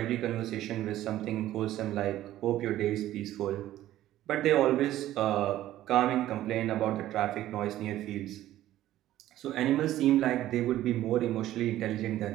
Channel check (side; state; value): left; quieter; 13.9 dB